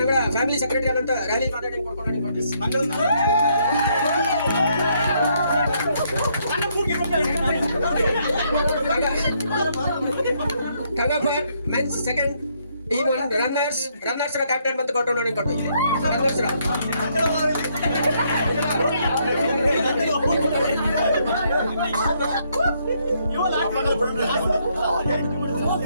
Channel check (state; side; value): inverted; both; correlation -0.72